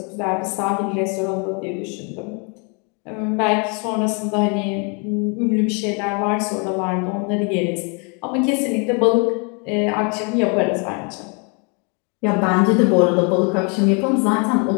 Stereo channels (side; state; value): right; quieter; 35.1 dB